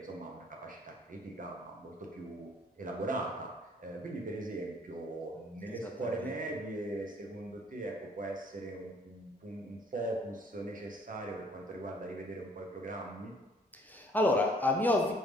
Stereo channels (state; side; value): normal; both; correlation 0.60